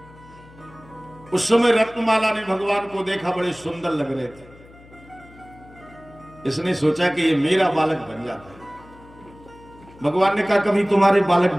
उस समय रत्नमाला ने भगवान को देखा, बड़े सुंदर लग रहे थे। इसने सोचा कि ये मेरा बालक बन जाता है। भगवान ने कहा कभी तुम्हारे बालक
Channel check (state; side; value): noise; left; hum, 23 dB below the sound